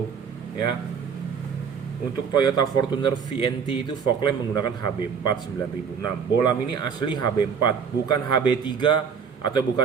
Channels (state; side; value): quieter; left; 6.6 dB